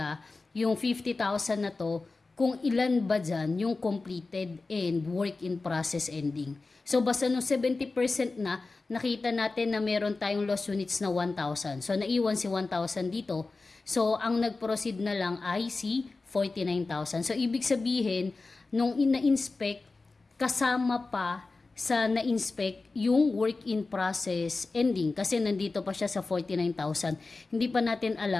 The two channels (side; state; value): right; quieter; 3.7 dB